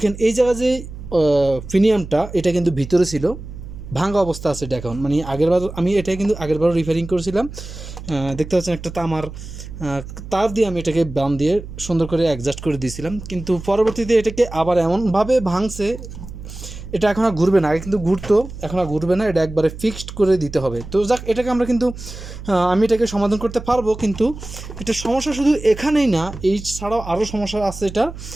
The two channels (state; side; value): noise; right; hum, 12 dB below the sound